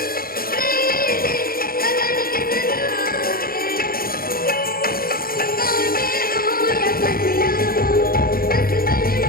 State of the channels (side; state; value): right; late; 0.43 ms